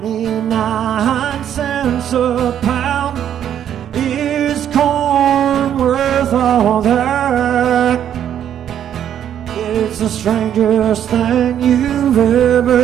cents a pound, is corn worth all that? It's the strangest thing you've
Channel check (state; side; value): quieter; left; 9.9 dB